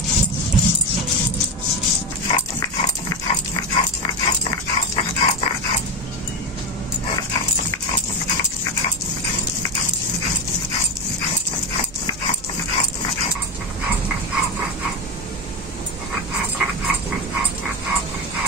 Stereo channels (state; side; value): normal; both; correlation 0.16